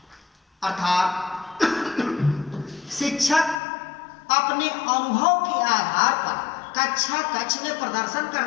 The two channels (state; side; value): drops out; right; at 3.6 s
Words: अर्थात शिक्षक अपने अनुभव के आधार पर कक्षा कक्ष में प्रदर्शन